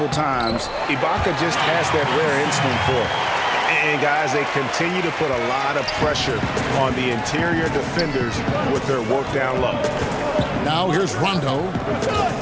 times. Ibaka just has that rare instinct for it. And, guys, they continue to put a lot of pressure on the interior defenders with their work down low. Now here's Rondo.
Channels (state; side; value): identical; both; correlation 1.00